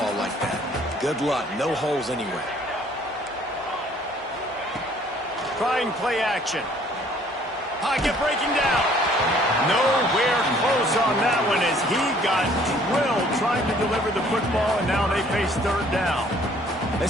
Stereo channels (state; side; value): normal; both; correlation 0.58